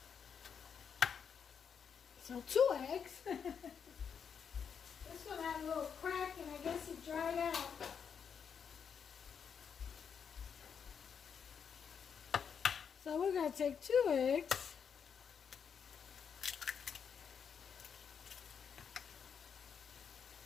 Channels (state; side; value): quieter; right; 7.0 dB